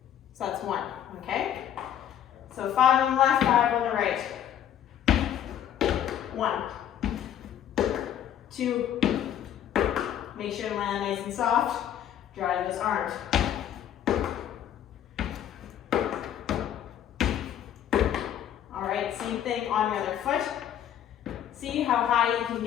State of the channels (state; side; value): quieter; right; 10.5 dB